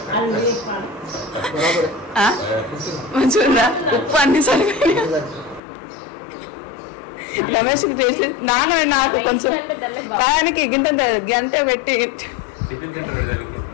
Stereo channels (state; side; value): drops out; right; at 5.6 s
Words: మంచిగా ఉప్పు అన్ని సరిపోయి రమేష్ నాన్న నాకు కొంచెం బాగానికి గింత గంట పెట్టి టిఫిన్